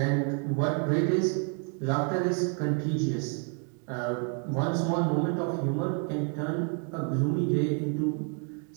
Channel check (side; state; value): left; quieter; 38.7 dB